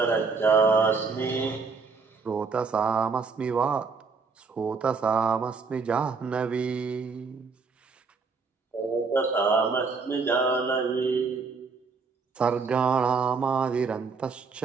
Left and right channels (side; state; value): left; quieter; 4.8 dB